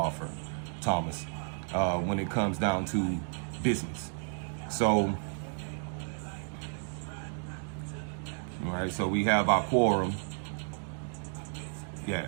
Thomas, when it comes down to business. So, all right, so we have our quorum. Yeah,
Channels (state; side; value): silent; left; 56 dB below the other